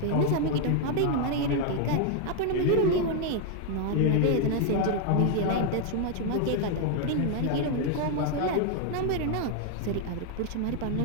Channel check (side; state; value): both; different; correlation 0.00